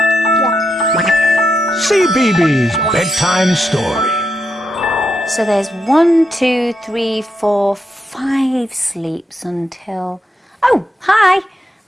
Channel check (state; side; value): normal; both; correlation 0.82